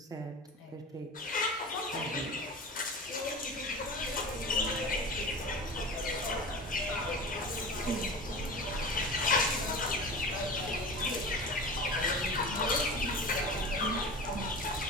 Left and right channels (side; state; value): both; normal; correlation 0.33